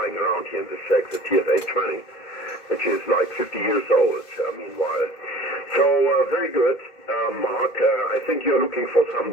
around here in the shack, the TS-830, which is like 50 years old, meanwhile. So very good, Mark. I think you're looking for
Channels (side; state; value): right; late; 2.0 ms